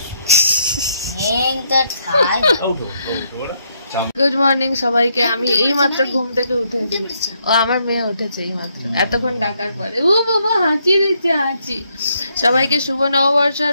গুড মর্নিং সবাইকে। আমি এই মাত্র ঘুম থেকে উঠেছি, ও আমার মেয়ে উঠেছে এই মাত্র, এতক্ষণ ডাকার পরে। ও বাবা হাঁচি দিচ্ছে, হাঁচি। সবাইকে শুভ নববর্ষ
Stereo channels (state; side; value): inverted; both; correlation -0.75